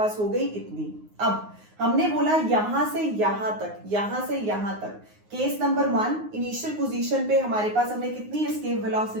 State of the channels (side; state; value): left; late; 9.6 ms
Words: हो गई इतनी। अब हमने बोला यहां से यहां तक, यहां से यहां तक, केस नंबर 1 इनिशियल पोजीशन पे हमारे पास हमने कितनी एस्केप